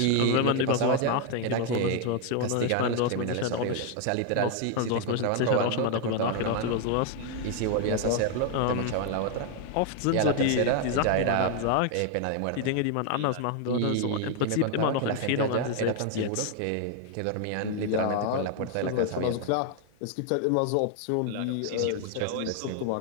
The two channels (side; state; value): both; different; correlation 0.00